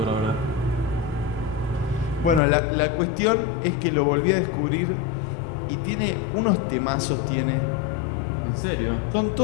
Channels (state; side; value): drops out; right; at 2.4 s